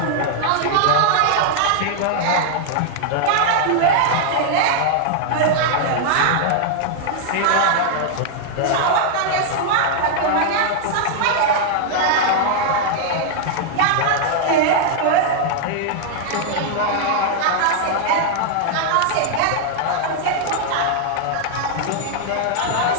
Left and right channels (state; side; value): different; both; correlation -0.01